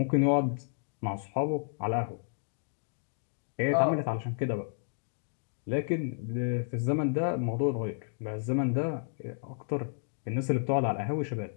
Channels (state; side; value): silent; right; digital silence